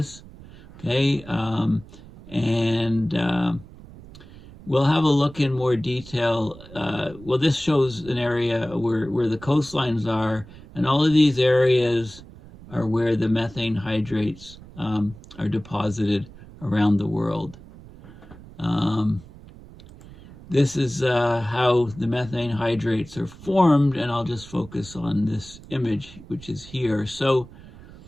Okay, we'll have a look in more detail. Well, this shows an area where the coastlines are, and all of these areas are where the methane hydrates are deposited around the world. this is how the methane hydrates are formed, and I'll just focus on this image, which is here. So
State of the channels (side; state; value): right; noise; rumble, 19 dB below the sound